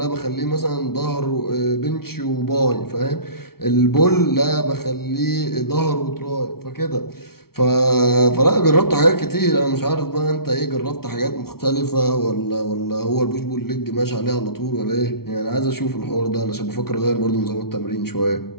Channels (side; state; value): right; late; 0.94 ms